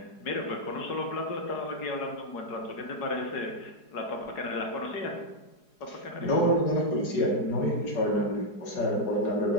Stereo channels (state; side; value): late; right; 4.8 ms